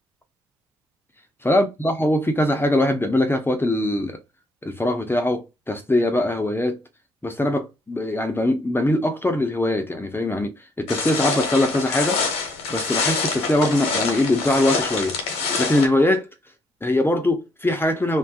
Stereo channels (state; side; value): normal; both; correlation 0.73